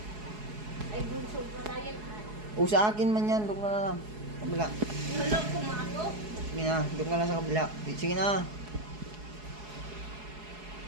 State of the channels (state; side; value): late; left; 4.7 ms